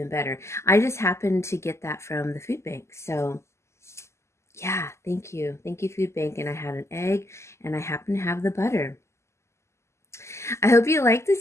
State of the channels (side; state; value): right; late; 0.13 ms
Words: better. I just happened to get that from the food bank. So yeah, thank you. Thank you, food bank. And I had an egg and I happen to have the butter. I hope you like